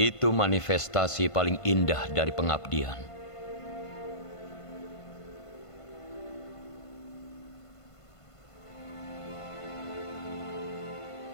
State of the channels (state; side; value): late; right; 1.5 ms